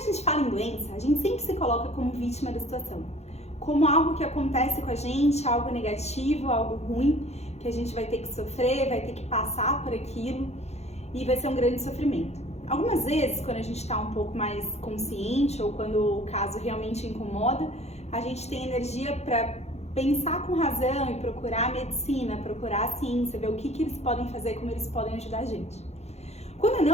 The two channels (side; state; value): right; late; 0.31 ms